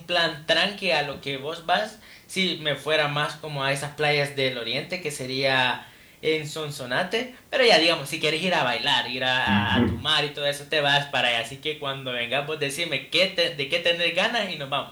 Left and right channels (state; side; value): identical; both; correlation 1.00